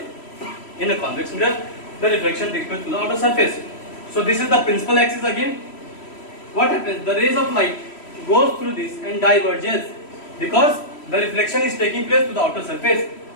in a convex mirror, the reflection takes place to the outer surface. So this is the principal axis again. What happens? The rays of light goes through this and diverges because the reflection is taking place to the outer surface.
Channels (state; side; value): late; right; 3.1 ms